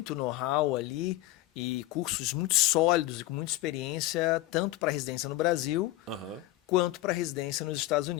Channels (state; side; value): quieter; right; 16.9 dB